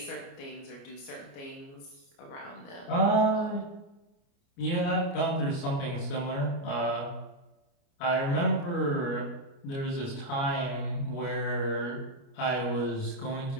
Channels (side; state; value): right; late; 29 ms